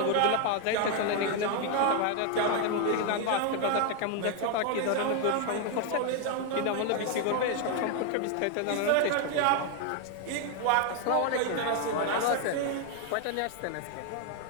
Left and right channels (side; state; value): both; different; correlation 0.00